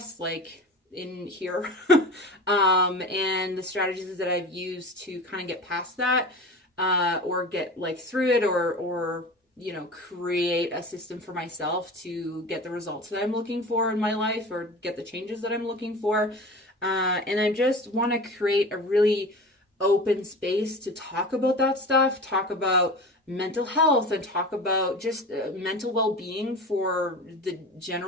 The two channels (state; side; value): normal; both; correlation 0.34